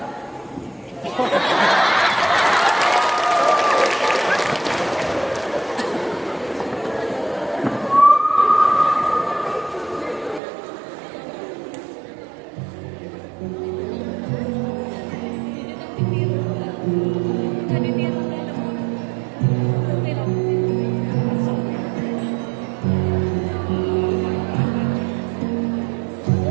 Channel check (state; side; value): drops out; left; at 10.4 s